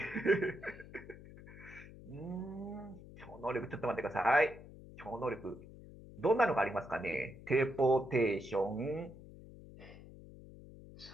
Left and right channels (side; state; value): left; noise; hum, 17 dB below the sound